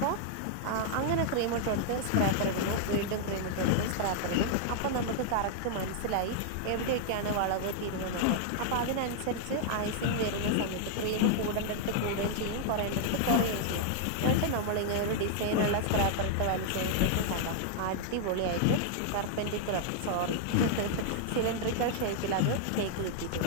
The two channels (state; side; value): different; both; correlation 0.00